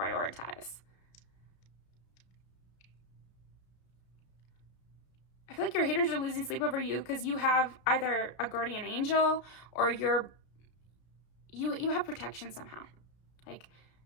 I feel like your haters are losing sleep over you because you have either a guardian angel, or you have protection somehow. Like,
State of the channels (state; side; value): late; right; 33 ms